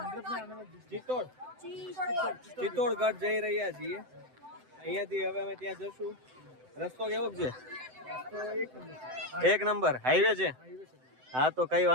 ચિત્તોડગઢ જઈ રહ્યા છીએ. અહીંયાથી હવે અમે ત્યાં જશું. રસ્તો કેવો છે? એક નંબર હાઈવે છે. હા તો કઈ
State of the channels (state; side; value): late; left; 7.8 ms